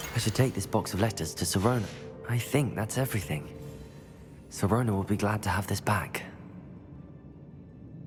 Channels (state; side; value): identical; both; correlation 1.00